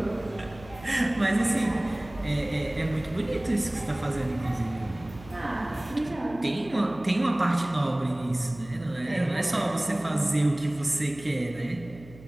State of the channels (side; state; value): right; noise; hum, 19 dB below the sound